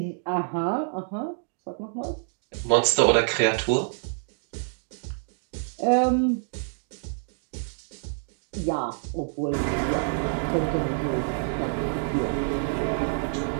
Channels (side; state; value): left; silent; 60 dB below the other